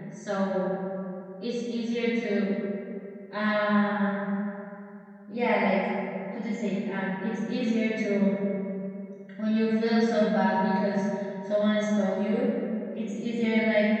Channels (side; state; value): both; identical; correlation 1.00